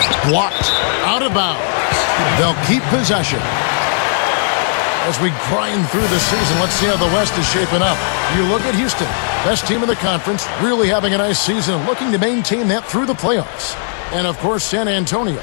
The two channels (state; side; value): silent; right; digital silence